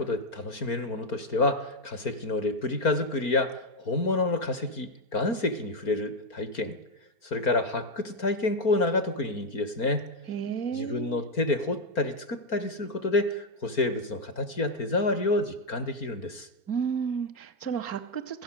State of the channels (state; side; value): late; right; 4.4 ms